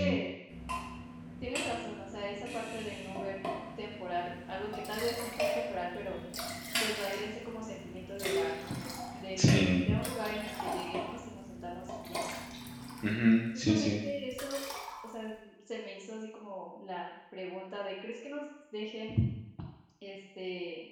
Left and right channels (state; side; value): identical; both; correlation 1.00